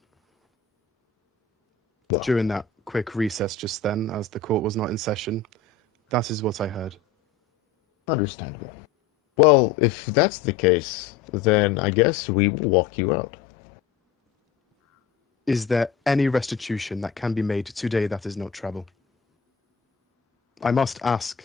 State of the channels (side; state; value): right; quieter; 6.1 dB